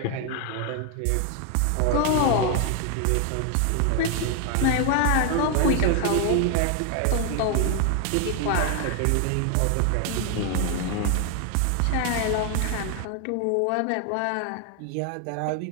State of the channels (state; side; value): different; both; correlation 0.00